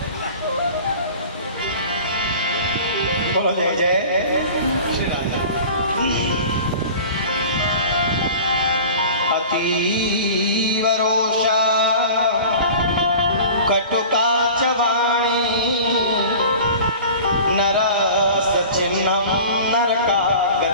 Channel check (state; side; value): inverted; both; correlation -0.40